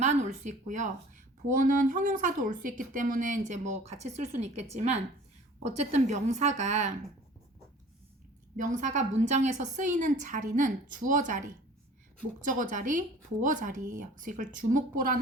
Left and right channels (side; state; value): both; normal; correlation 0.47